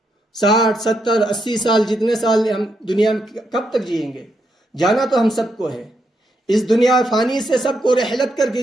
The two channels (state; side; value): normal; both; correlation 0.80